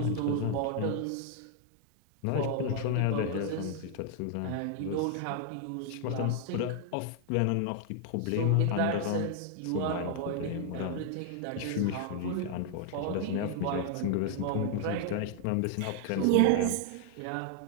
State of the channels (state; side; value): different; both; correlation 0.00